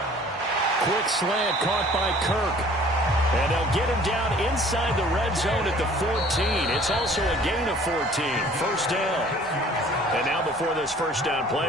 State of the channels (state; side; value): normal; both; correlation 0.52